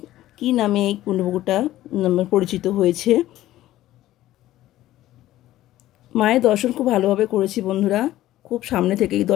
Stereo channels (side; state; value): right; quieter; 14.7 dB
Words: কি নামে এই কুণ্ডপুকুরটা পরিচিত হয়েছে। মায়ের দর্শন খুব ভালোভাবে করেছি বন্ধুরা, খুব সামনে থেকেই